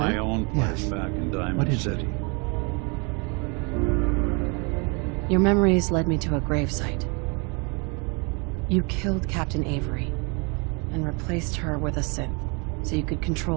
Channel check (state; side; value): quieter; left; 31.9 dB